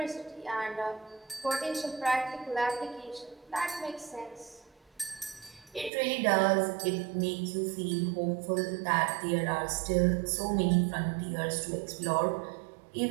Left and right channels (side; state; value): left; drops out; at 5.9 s